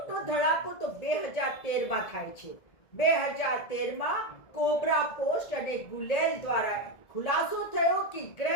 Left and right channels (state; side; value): late; right; 1.7 ms